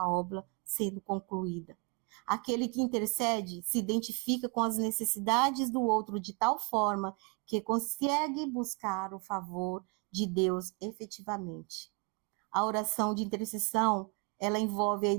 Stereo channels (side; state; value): left; quieter; 30.5 dB